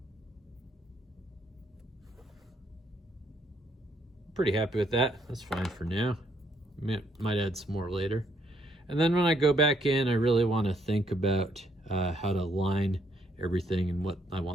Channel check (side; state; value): both; normal; correlation 0.71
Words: Pretty happy with that. That's fine for now. Might add some more later. And then when I go back in, I really want to think about how to line everything and what I